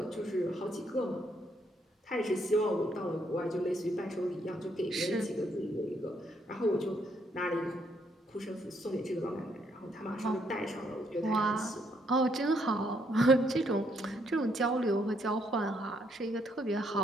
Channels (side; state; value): both; normal; correlation 0.72